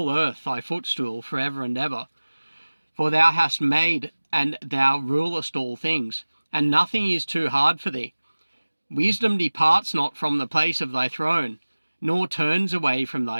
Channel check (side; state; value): both; inverted; correlation -1.00